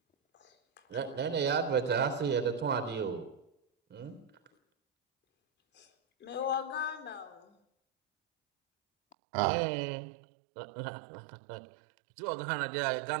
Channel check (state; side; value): drops out; left; at 9.2 s